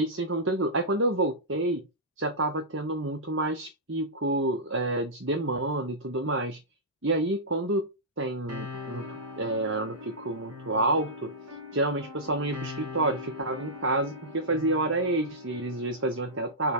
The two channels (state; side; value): normal; both; correlation -0.13